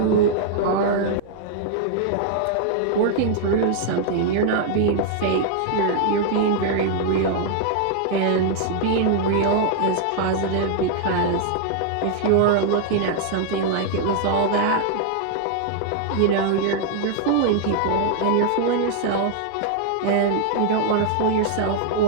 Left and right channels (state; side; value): different; both; correlation 0.00